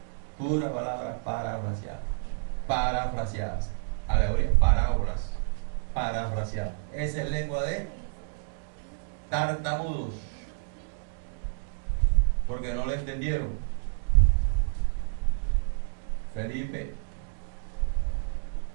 pura palabra parafraseadas, alegorías, parábolas parafraseadas. Esa es lengua de tartamudos, porque no le entendieron. Felipe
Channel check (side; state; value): left; silent; digital silence